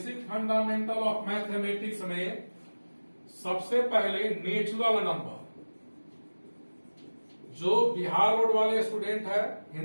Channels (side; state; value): both; inverted; correlation -1.00